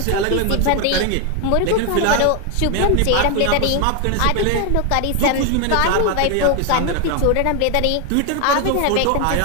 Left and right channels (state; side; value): different; both; correlation 0.01